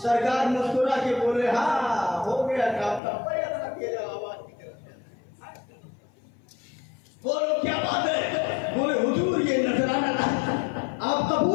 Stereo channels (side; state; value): right; drops out; at 3.0 s